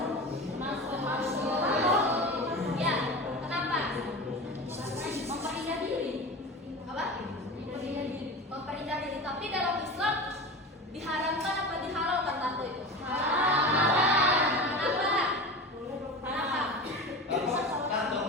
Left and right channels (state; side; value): normal; both; correlation 0.30